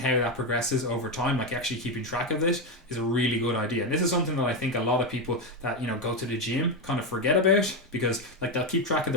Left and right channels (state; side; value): normal; both; correlation 0.10